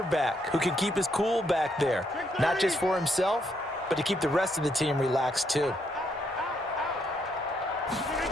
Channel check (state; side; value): normal; both; correlation 0.75